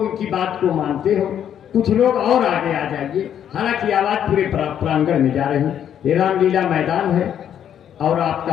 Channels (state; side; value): quieter; right; 9.6 dB